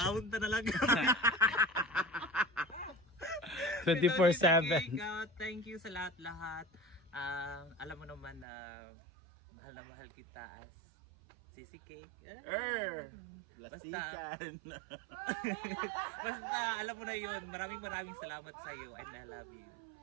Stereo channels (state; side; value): drops out; left; at 8.5 s